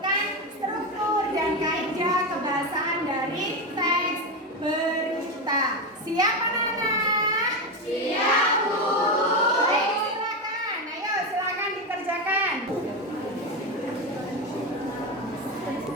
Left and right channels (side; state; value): both; normal; correlation 0.13